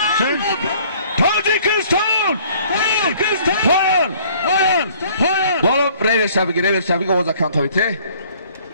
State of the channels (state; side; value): inverted; both; correlation -0.56